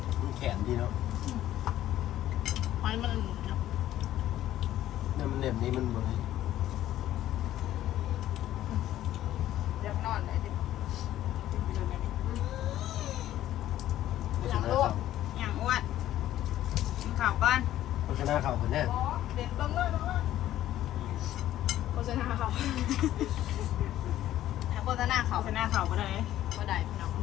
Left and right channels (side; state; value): right; quieter; 13.2 dB